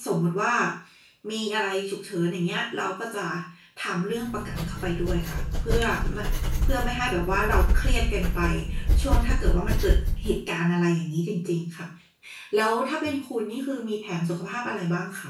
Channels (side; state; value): both; identical; correlation 1.00